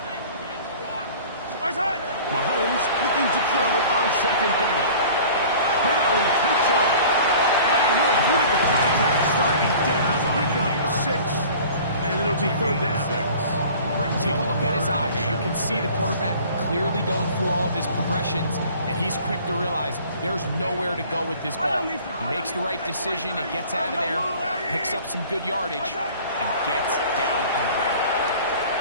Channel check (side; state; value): both; inverted; correlation -0.46